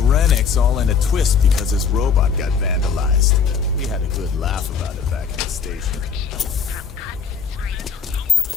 Rennick's all in a twist because his robot got vandalized. We had a good laugh about it back in the station.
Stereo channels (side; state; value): right; quieter; 6.2 dB